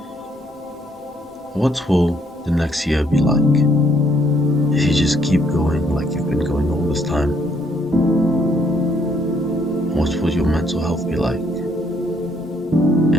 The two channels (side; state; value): both; normal; correlation 0.69